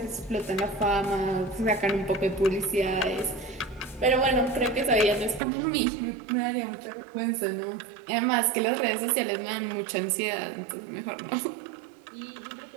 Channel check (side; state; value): left; drops out; at 5.4 s